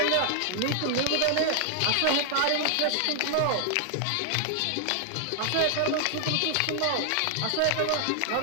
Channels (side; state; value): both; different; correlation 0.00